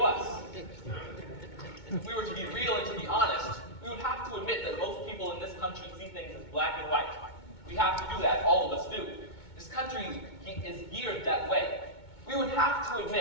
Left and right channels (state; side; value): late; right; 2.2 ms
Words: us. If we were to be real and to be honest, we would have to admit that most people in this country see things as black and white. We have to do that, all of us do. This country is geared that way. We would have to